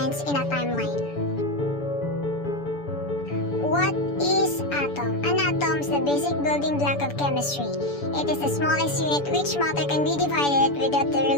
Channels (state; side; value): late; right; 7.0 ms